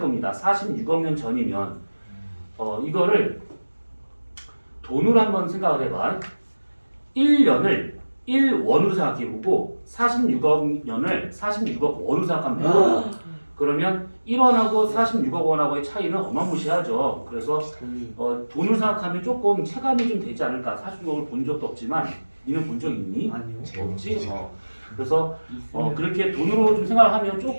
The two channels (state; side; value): inverted; both; correlation -1.00